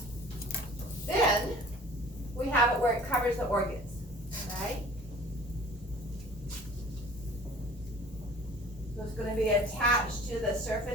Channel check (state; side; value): normal; both; correlation 0.47